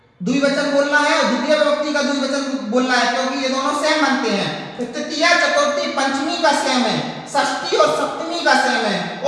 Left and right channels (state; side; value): identical; both; correlation 1.00